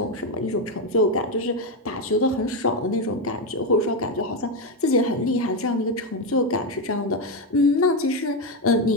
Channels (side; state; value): both; normal; correlation 0.08